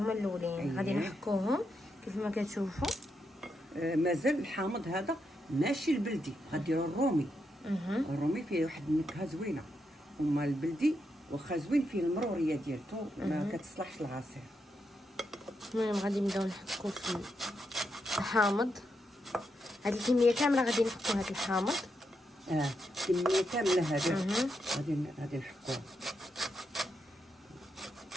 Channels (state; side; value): normal; both; correlation 0.83